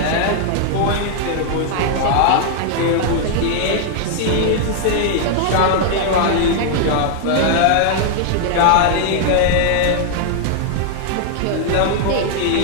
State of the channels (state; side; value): different; both; correlation 0.00